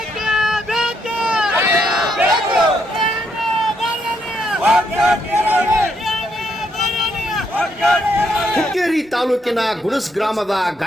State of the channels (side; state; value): both; normal; correlation 0.75